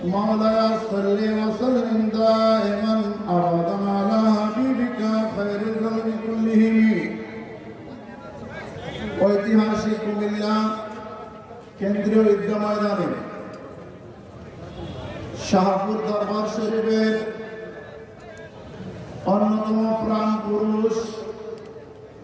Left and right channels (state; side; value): identical; both; correlation 1.00